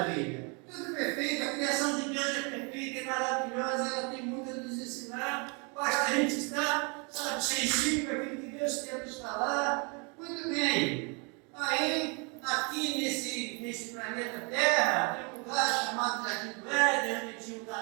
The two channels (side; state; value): left; quieter; 33.4 dB